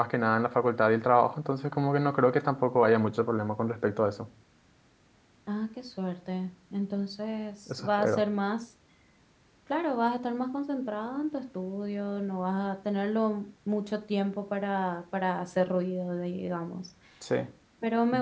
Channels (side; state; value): both; identical; correlation 1.00